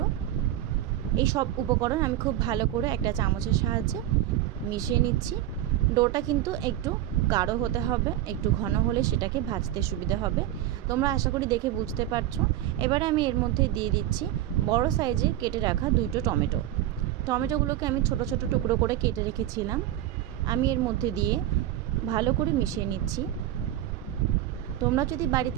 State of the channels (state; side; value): quieter; left; 13.0 dB